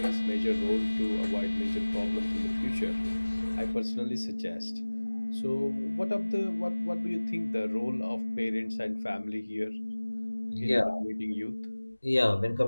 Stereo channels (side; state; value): both; inverted; correlation -1.00